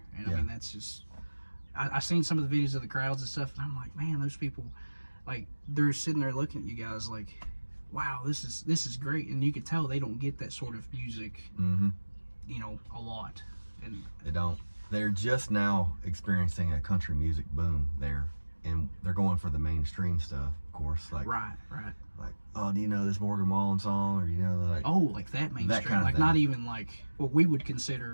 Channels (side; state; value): both; inverted; correlation -1.00